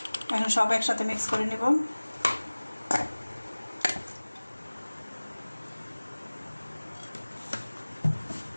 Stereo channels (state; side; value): inverted; both; correlation -1.00